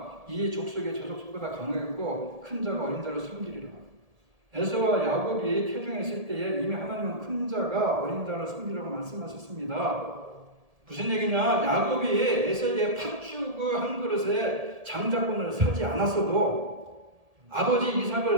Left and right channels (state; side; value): late; left; 1.7 ms